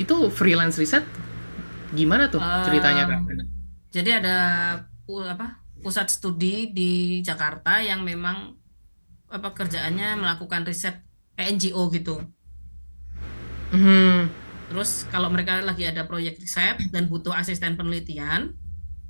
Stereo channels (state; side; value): inverted; both; correlation -1.00